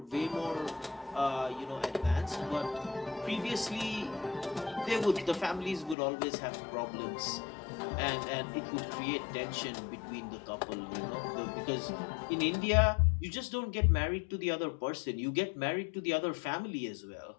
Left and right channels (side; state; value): right; drops out; at 6.0 s